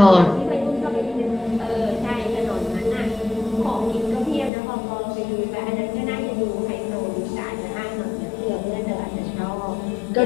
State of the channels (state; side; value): drops out; right; at 4.5 s